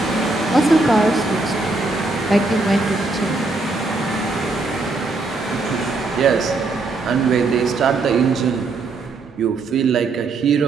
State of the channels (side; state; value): left; quieter; 3.5 dB